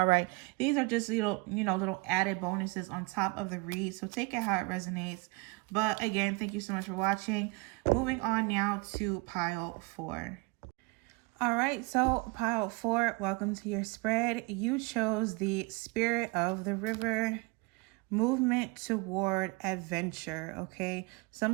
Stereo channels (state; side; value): quieter; left; 26.6 dB